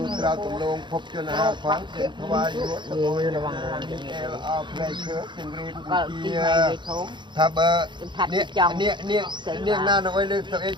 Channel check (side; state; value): left; late; 0.23 ms